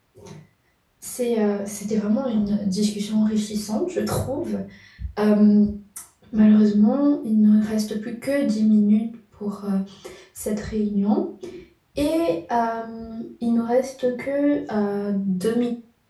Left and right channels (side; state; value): both; identical; correlation 1.00